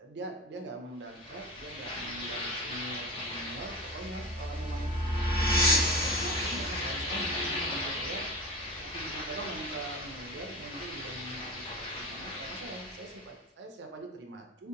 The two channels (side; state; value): both; normal; correlation 0.30